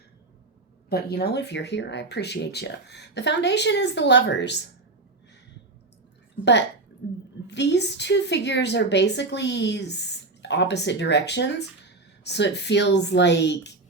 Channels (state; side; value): quieter; left; 3.3 dB